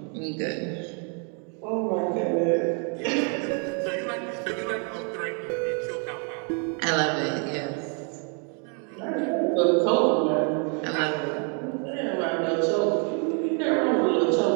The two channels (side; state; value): left; quieter; 39.6 dB